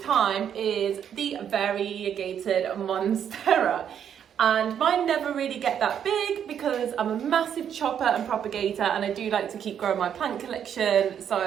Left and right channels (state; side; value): quieter; left; 8.8 dB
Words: time is the variegated Monstera. And mine never really get that big because I'm a massive chopper and propagator, and I do like to keep growing my plant collection,